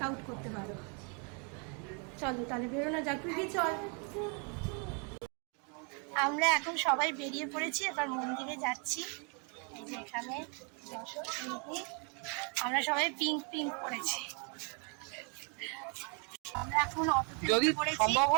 আউট করতে পারো। চলো তাহলে বেরোনো যাক। তুই চল। আমরা এখন সবাই বেরিয়ে পড়েছি, এবার মন্দিরে যাচ্ছি। এই যে এখানে আমরা সবাই পিঙ্ক পরেছি। আমরা এখন যদি সম্ভব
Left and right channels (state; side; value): quieter; left; 36.6 dB